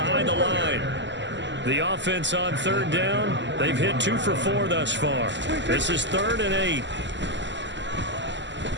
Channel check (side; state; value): left; late; 0.53 ms